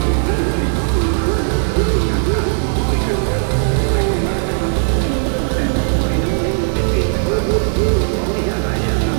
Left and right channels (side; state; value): left; silent; digital silence